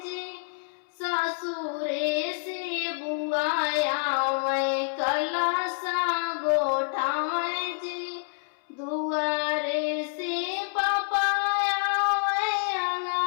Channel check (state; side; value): silent; right; 60 dB below the other